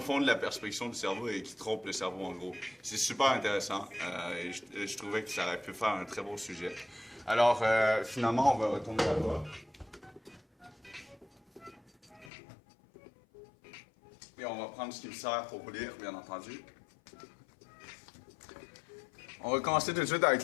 la perspection du cerveau et qui trompent le cerveau, en gros. C'est super intéressant et je trouvais que ça aurait pu faire un très beau sujet. Alors, finalement, on va retourner là-bas. Et on va prendre ce qui me sert pour lire, bien entendu. On va commencer tout de suite avec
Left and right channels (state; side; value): drops out; right; at 12.3 s